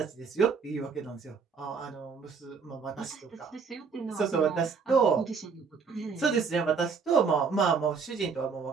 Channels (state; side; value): quieter; left; 5.6 dB